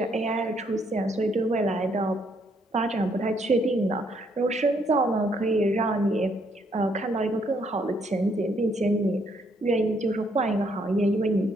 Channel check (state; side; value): normal; both; correlation 0.70